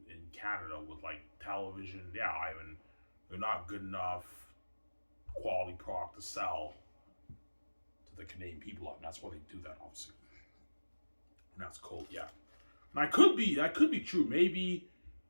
Canada with like television. Yeah, Ivan. They're not good enough quality product to sell to the Canadian people. And that's why they do that, obviously. And that's cool, yeah. And that could be true. Maybe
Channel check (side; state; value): both; inverted; correlation -1.00